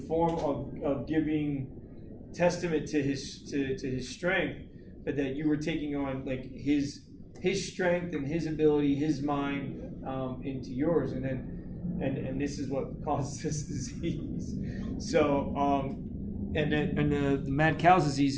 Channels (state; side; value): identical; both; correlation 1.00